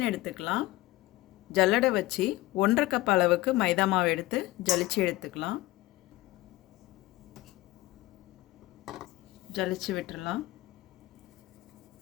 எடுத்துக்கலாம். ஜல்லடை வச்சு 1.5 கப் அளவுக்கு மைதா மாவு எடுத்து ஜலிச்சு எடுத்துக்கலாம். ஜலிச்சு விட்டுடலாம்.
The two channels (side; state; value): right; quieter; 18.0 dB